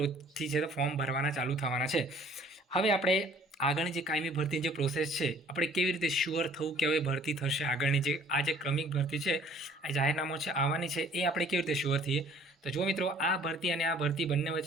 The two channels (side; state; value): both; normal; correlation 0.55